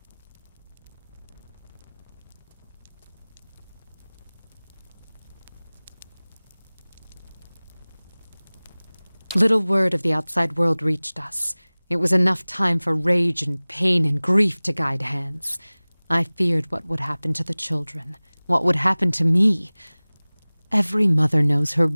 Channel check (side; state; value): both; inverted; correlation -1.00